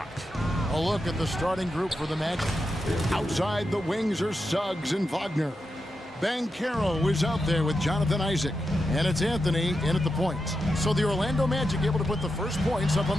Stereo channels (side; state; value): both; normal; correlation 0.88